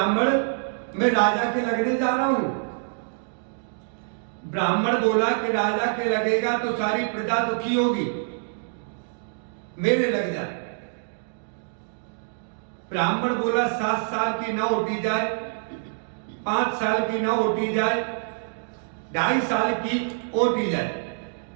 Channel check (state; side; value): silent; left; digital silence